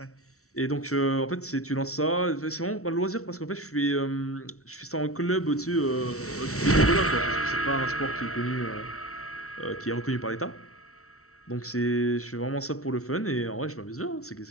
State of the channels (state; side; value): late; right; 0.64 ms